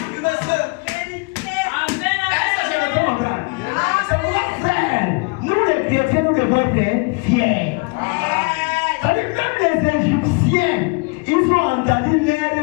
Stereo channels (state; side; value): quieter; right; 29.9 dB